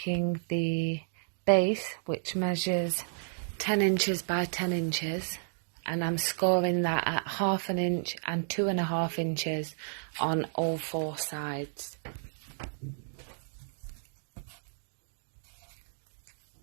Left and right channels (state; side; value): silent; left; digital silence